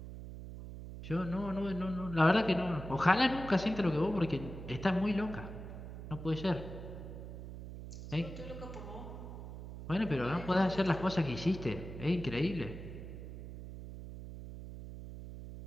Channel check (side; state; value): right; noise; hum, 10 dB below the sound